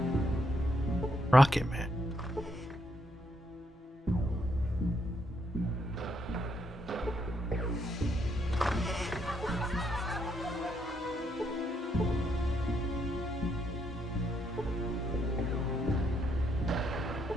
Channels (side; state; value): both; normal; correlation 0.76